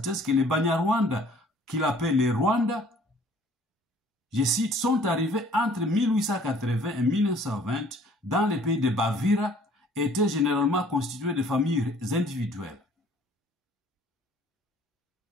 que les Banyarwanda, qu'il appelle les Rwanda, je cite, sont arrivés entre 1880 et 1920 dans les pays de Bavira, étaient généralement constitués de familles individuelles.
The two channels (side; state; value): both; normal; correlation 0.55